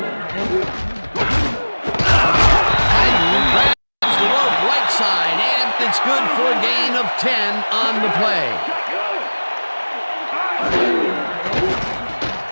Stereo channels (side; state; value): both; inverted; correlation -1.00